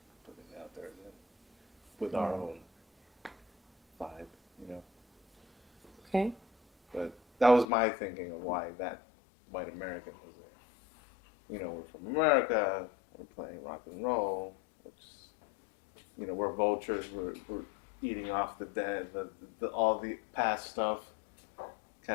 it out there again with our own vibe, you know. Okay. But that was my thinking of why that white American was there. You know, we're from America. We're playing rock and roll, which, you know, we're vultures. We're eating off the dead, the all the past stuff,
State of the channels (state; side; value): drops out; right; at 7.7 s